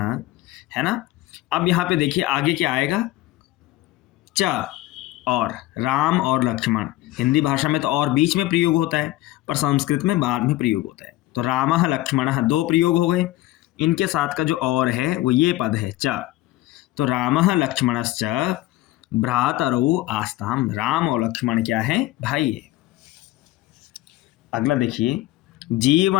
है ना। अब यहाँ पे देखिए आगे क्या आएगा? च और, राम और लक्ष्मण। हिंदी भाषा में तो और बीच में प्रयोग होता है, पर संस्कृत में बाद में प्रयोग होता है। तो रामः लक्ष्मणः दो प्रयोग हो गए। इनके साथ का जो और है वो ये पद है च। तो रामः लक्ष्मणश्च भ्रातरौ आस्ताम। राम और लक्ष्मण क्या है? भाई है। अगला देखिए,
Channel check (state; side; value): quieter; right; 16.7 dB